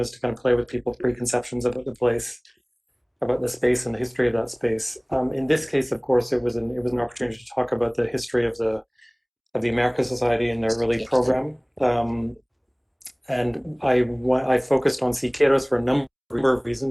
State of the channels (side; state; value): both; identical; correlation 1.00